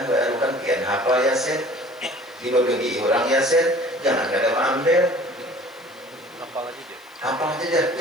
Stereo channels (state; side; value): noise; left; hiss, 28 dB below the sound